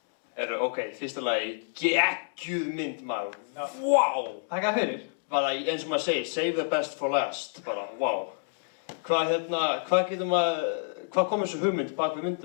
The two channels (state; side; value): silent; right; digital silence